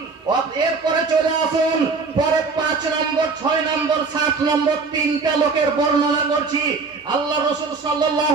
এরপরে চলে আসুন পরে 5 নম্বর, 6 নম্বর, 7 নম্বর 3টা লোকের বর্ণনা করছি। আল্লাহ রাসূল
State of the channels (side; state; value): left; quieter; 4.4 dB